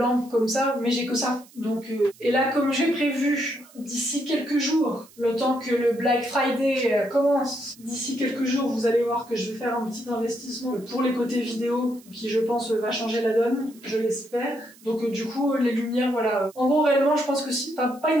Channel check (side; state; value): right; noise; hiss, 25 dB below the sound